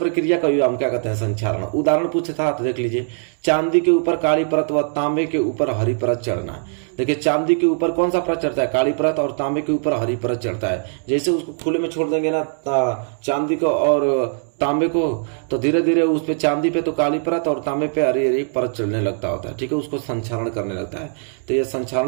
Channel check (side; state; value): left; silent; 65 dB below the other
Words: का हम क्या कहते हैं, संक्षारण। उदाहरण पूछे था तो देख लीजिए, चांदी के ऊपर काली परत व तांबे के ऊपर हरी परत चढ़ना। देखिए चांदी के ऊपर कौन सा परत चढ़ता है, काली परत, और तांबे के ऊपर हरी परत चढ़ता है। जैसे उसको खुले में छोड़ देंगे ना चांदी को और तांबे को, तो धीरे धीरे उस पे चांदी पे तो काली परत और तांबे पे हरी हरी परत चढ़ने लगता होता है, ठीक है, उसको संक्षारण करने लगता है। तो ये